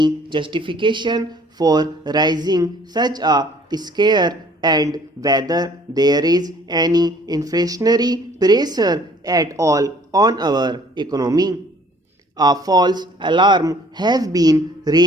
justification for rising such a scare and whether there is any inflationary pressure at all on our economy. A false alarm has been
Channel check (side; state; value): both; normal; correlation 0.56